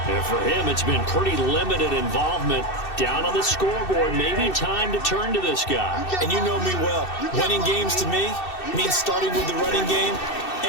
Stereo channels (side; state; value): right; late; 2.6 ms